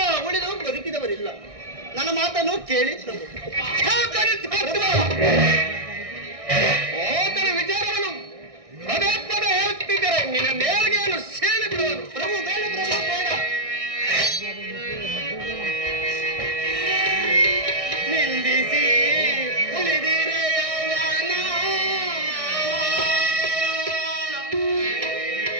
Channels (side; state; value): left; late; 1.6 ms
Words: ಉಳಿದು ಬದುಕಿದವರಿಲ್ಲ. ನನ್ನ ಮಾತನ್ನು ಕೇಳಿ ಪ್ರಭು. ಆತನ ವಿಚಾರವನ್ನು ಪದೇ ಪದೇ ಹೇಳುತ್ತಿದ್ದರೆ ನಿನ್ನ ನೇರಿಗೆಯನ್ನು ಸೇರಿ ಬಿಡುವನು. ಪ್ರಭು ಬೇಡ, ಪ್ರಭು ಬೇಡ. ನಿಂದಿಸಿ ಉಳಿದಿರೆ ಯೌವನ,